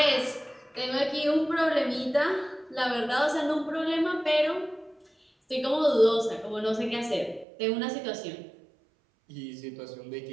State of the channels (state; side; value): drops out; left; at 7.5 s